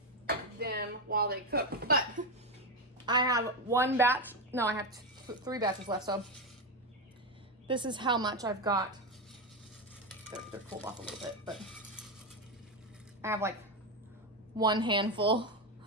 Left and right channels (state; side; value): normal; both; correlation 0.11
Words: them while they cook. But I have one batch, no, I have 3 batches left, so this is how much I've got. They're cooled off a little bit, but I have like 1 handful